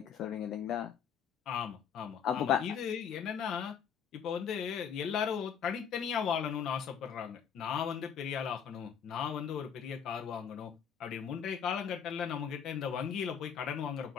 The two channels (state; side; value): quieter; right; 7.6 dB